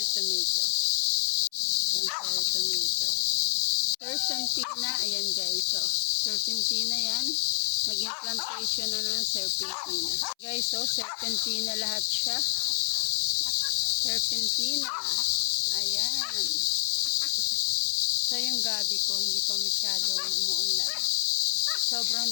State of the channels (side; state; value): right; silent; 59 dB below the other